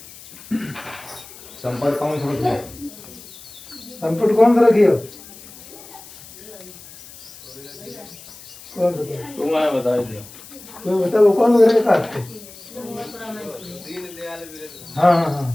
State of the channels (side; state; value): left; noise; hiss, 18 dB below the sound